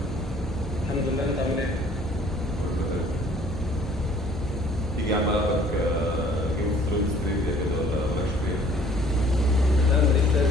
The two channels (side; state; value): both; normal; correlation 0.56